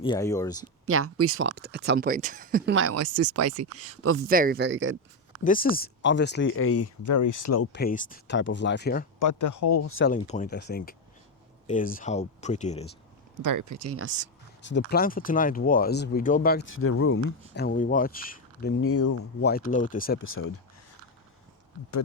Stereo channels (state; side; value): normal; both; correlation 0.08